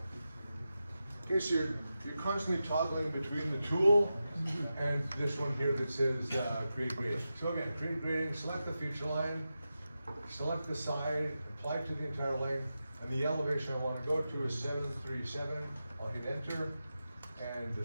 Okay, so you're constantly toggling between the tool and this one here that says create grading. So again, create grading, select the feature line, select the side, apply to the entire length, and the elevation I want to go to is 737. I'll hit enter, and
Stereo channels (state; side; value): inverted; both; correlation -0.91